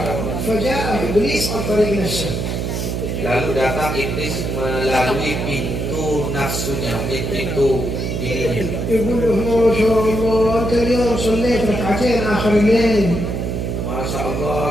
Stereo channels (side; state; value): right; noise; hum, 2 dB below the sound